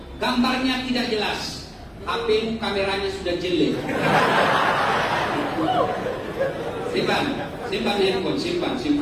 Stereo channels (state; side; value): identical; both; correlation 1.00